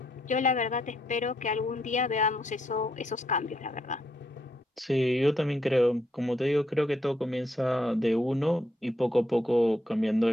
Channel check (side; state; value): both; normal; correlation 0.75